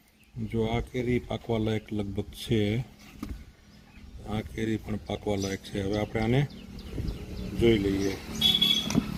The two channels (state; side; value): identical; both; correlation 1.00